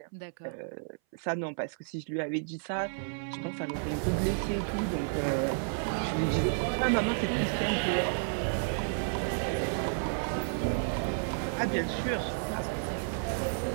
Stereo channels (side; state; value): left; silent; 57 dB below the other